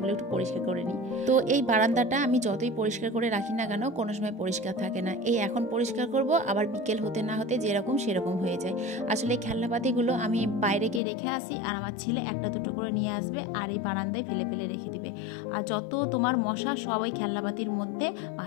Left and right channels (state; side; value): drops out; right; at 11.0 s